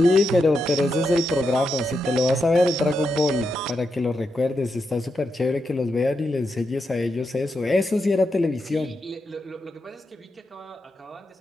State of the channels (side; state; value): both; normal; correlation 0.85